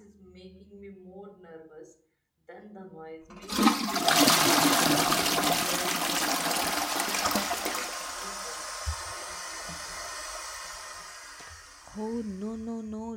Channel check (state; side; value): identical; both; correlation 1.00